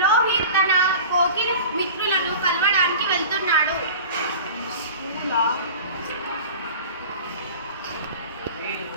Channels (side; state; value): both; inverted; correlation -0.37